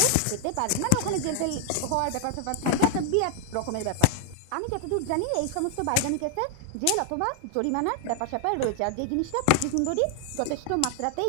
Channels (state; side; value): different; both; correlation 0.00